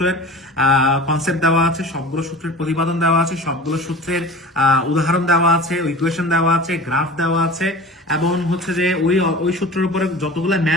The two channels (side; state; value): both; normal; correlation 0.38